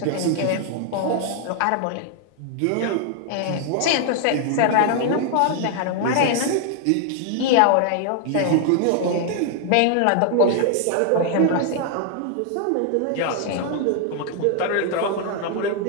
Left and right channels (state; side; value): different; both; correlation 0.00